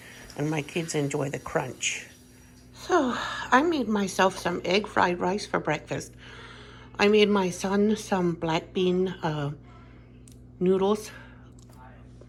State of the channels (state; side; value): identical; both; correlation 1.00